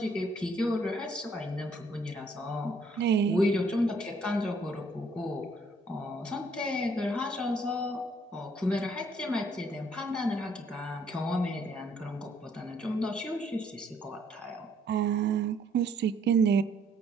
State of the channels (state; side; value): normal; both; correlation 0.65